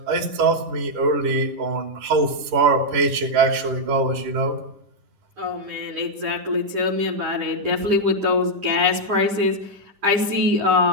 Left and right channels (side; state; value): left; late; 10 ms